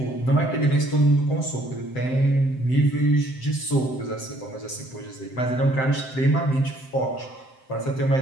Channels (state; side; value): late; right; 7.7 ms